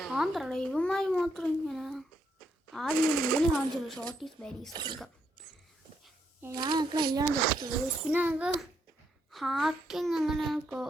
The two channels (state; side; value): normal; both; correlation 0.77